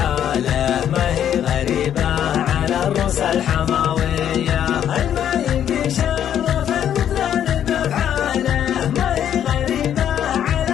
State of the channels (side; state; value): right; quieter; 9.9 dB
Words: ما هي غريبة على الروس الحماوية.